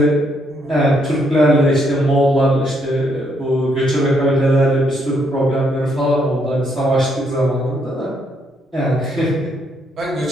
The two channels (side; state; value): both; normal; correlation 0.73